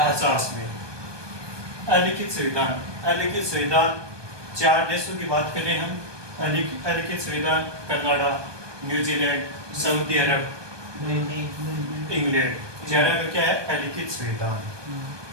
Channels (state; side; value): late; left; 1.2 ms